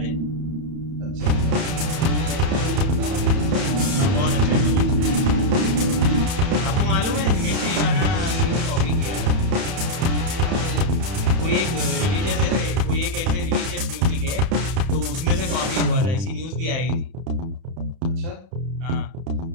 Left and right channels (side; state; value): left; late; 31 ms